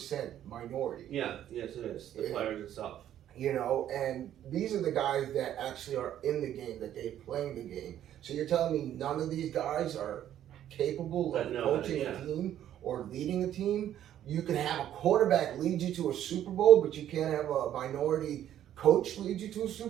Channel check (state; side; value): quieter; left; 11.2 dB